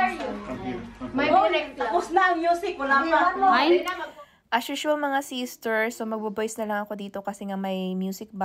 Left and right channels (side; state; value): both; identical; correlation 1.00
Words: you? May direct. Tapos na ang music, wala pa. Ay? As usual mga sisters, so magbo-voice na lang ako dito kasi nga may music